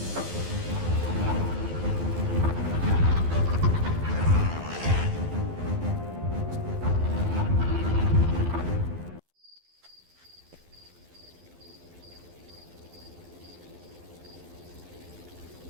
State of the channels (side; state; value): left; late; 12 ms